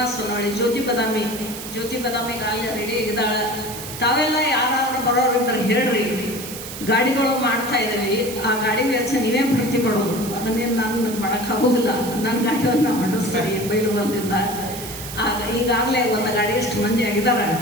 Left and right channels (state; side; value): noise; right; hiss, 10 dB below the sound